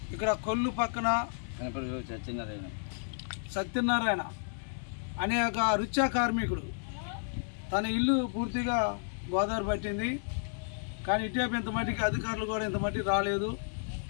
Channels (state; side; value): silent; right; digital silence